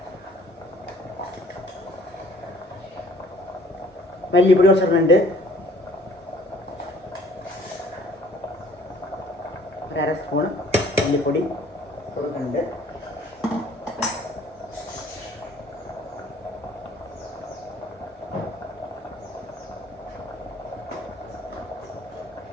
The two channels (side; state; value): both; normal; correlation 0.55